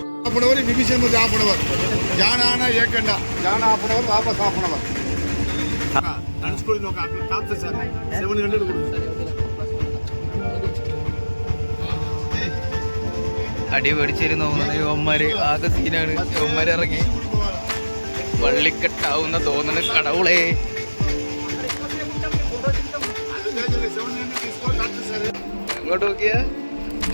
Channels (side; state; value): both; inverted; correlation -1.00